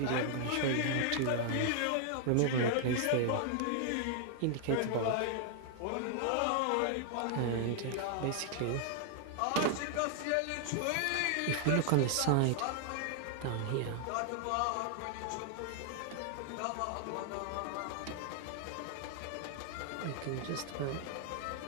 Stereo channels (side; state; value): both; different; correlation 0.00